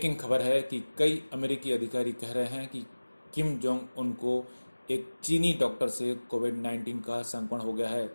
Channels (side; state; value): both; inverted; correlation -1.00